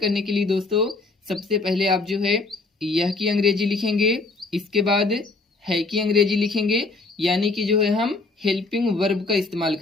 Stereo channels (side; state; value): right; quieter; 3.5 dB